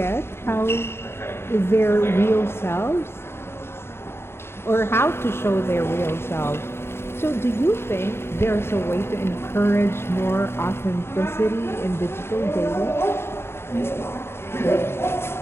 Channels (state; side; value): late; right; 0.12 ms